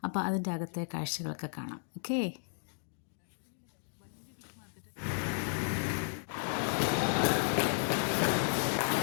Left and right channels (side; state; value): right; silent; digital silence